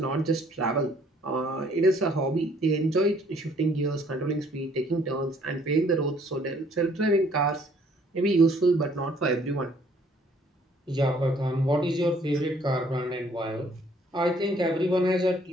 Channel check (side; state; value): both; normal; correlation 0.62